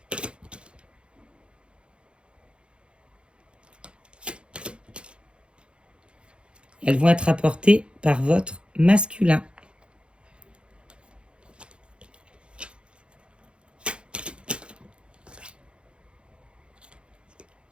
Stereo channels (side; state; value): left; late; 0.056 ms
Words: Elles vont être apportées par votre masculin.